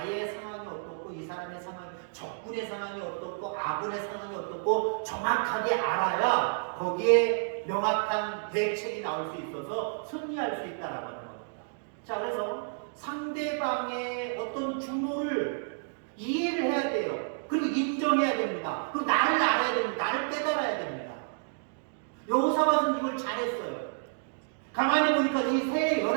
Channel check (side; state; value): left; silent; digital silence